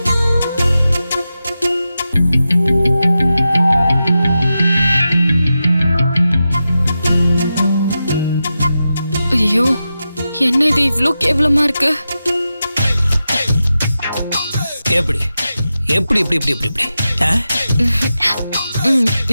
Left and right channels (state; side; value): inverted; both; correlation -0.91